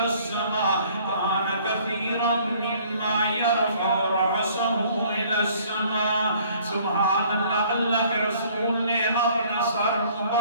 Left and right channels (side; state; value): both; inverted; correlation -0.57